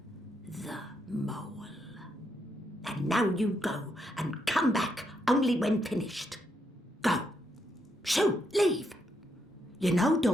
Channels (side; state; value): both; normal; correlation 0.79